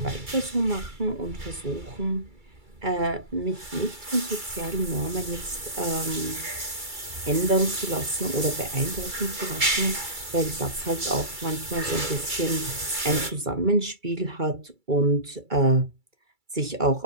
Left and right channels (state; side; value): late; left; 2.3 ms